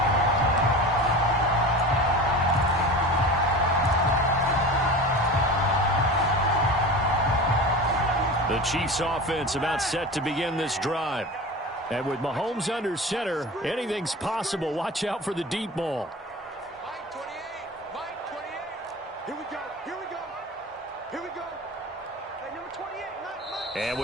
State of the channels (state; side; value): normal; both; correlation 0.33